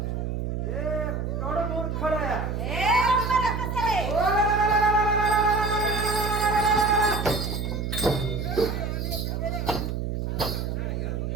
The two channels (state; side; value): noise; right; hum, 2 dB below the sound